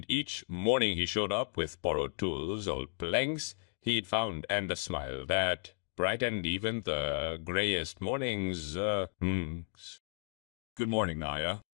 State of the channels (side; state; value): right; silent; digital silence